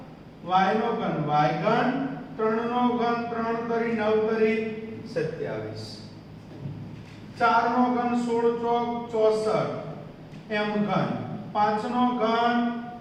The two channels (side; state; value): both; identical; correlation 1.00